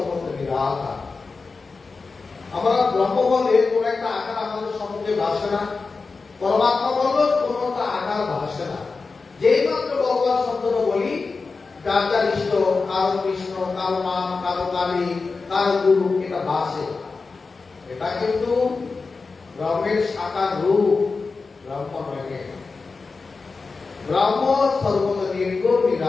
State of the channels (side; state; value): right; quieter; 4.3 dB